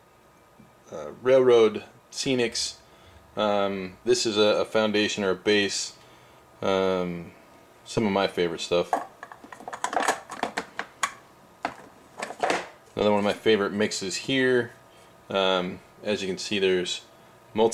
railroad scenics. This is a foundation or a base. Some of my favorite stuff. Another one of my favorite mixes here. As you can see, there's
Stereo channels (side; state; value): both; identical; correlation 1.00